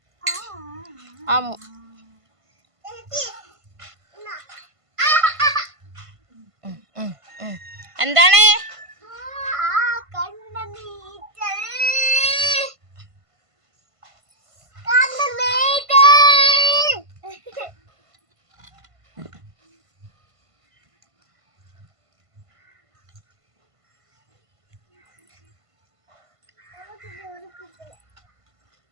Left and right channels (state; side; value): late; left; 1.5 ms